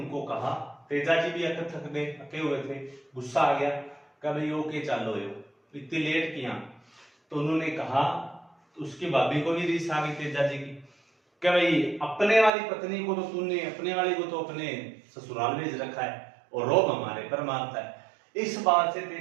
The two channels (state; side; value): drops out; left; at 12.5 s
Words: कहा, तेजा जी भी थक गए, थके हुए थे, गुस्सा आ गया, कभी ओके चलो यो इतनी लेट किया। तो उन्होंने कहा, तो उसकी भाभी को भी रीस आ गई तेजा जी की, कि भाई अपने वाली पत्नी को तो तूने, अपने वाली को तो अपने ससुराल भेज रखा है और रोब हमारे पर मारता है। इस बात से